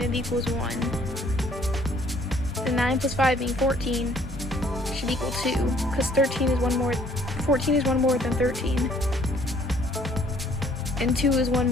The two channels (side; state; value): both; normal; correlation 0.61